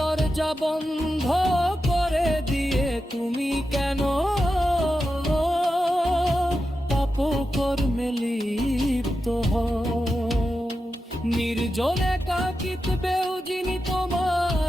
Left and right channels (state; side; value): normal; both; correlation 0.90